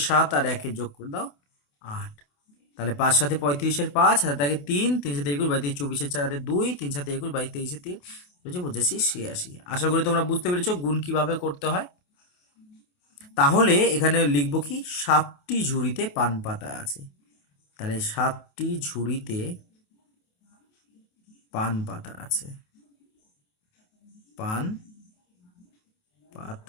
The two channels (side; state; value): right; late; 28 ms